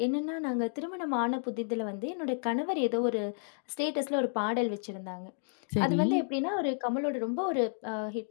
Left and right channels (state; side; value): silent; right; digital silence